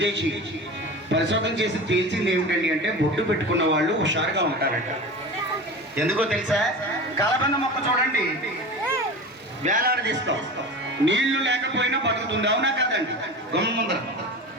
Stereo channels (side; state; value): both; normal; correlation 0.31